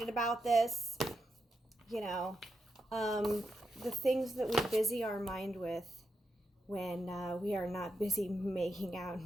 about this. You know, the things that we busy our mind with when we are not busy making out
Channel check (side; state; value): both; normal; correlation 0.85